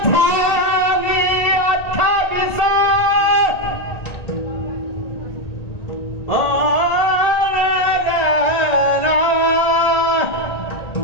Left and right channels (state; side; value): late; right; 1.8 ms